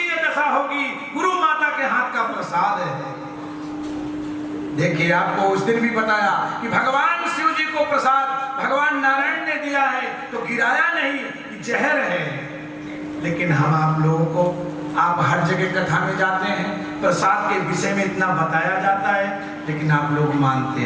दशा होगी, गुरु माता के हाथ का प्रसाद है। देखिए आपको उस दिन भी बताया कि भगवान शिव जी को प्रसाद भगवान नारायण ने दिया है तो गिराया नहीं कि जहर है। लेकिन हम आप लोगों को, आप हर जगह कथा में जाते हैं प्रसाद के विषय में इतना बताया जाता है लेकिन आप लोग मानते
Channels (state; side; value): identical; both; correlation 1.00